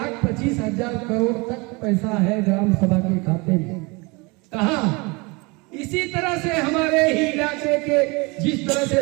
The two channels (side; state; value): left; quieter; 27.0 dB